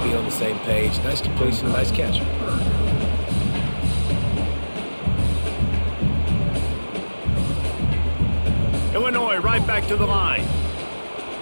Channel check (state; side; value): inverted; both; correlation -1.00